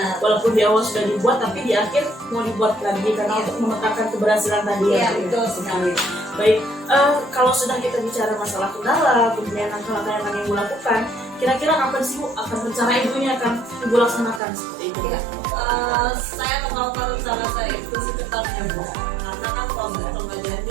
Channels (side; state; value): left; drops out; at 14.4 s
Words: Walaupun di awal sudah dibuat, tapi di akhir mau dibuat lagi karena untuk memetakan keberhasilan tadi ya. Iya, Bu. betul sekali. Baik, kalau sudah kita bicara masalah kendala, kemudian langkah-langkah yang akan Ibu lakukan, kira-kira kapan sih Bu akan rencana Ibu ini akan Ibu laksanakan seperti itu? Ya, saya melakukan rencana saya itu secepatnya Bu, karena kan proses pembelajaran